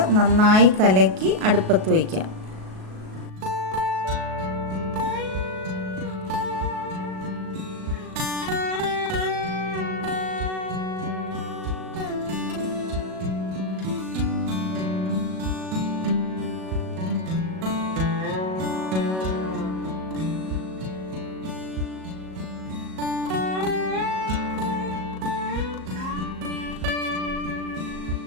നന്നായി കലക്കി അടുപ്പത്ത് വയ്ക്കാം.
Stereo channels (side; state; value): left; late; 37 ms